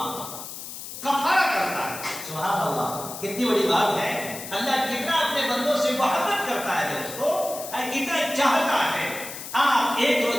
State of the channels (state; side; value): noise; left; hiss, 10 dB below the sound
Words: کرتا ہے، کفارہ کرتا ہے۔ سبحان اللہ، کتنی بڑی بات ہے، اللہ کتنا اپنے بندوں سے محبت کرتا ہے دوستو، کتنا چاہتا ہے۔ آپ 1